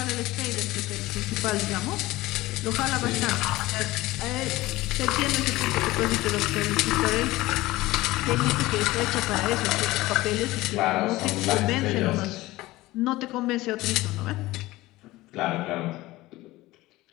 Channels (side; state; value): right; quieter; 18.6 dB